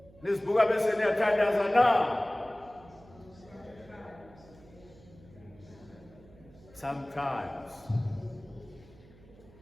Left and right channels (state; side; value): noise; right; hum, 24 dB below the sound